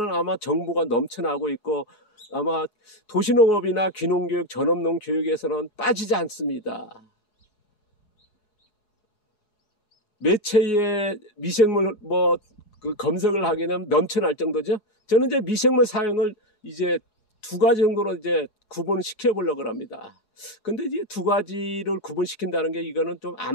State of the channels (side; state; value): right; late; 4.8 ms